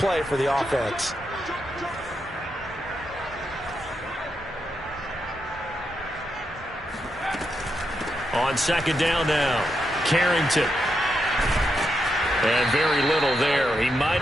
for the offense. On second down now, Carrington. And very little there. He might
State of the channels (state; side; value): normal; both; correlation 0.83